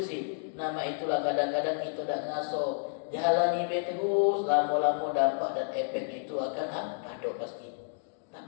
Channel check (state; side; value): silent; right; digital silence